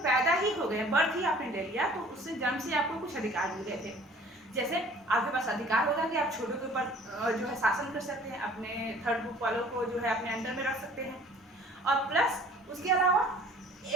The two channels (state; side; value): normal; both; correlation 0.51